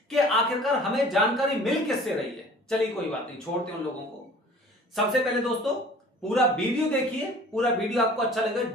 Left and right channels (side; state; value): both; normal; correlation 0.47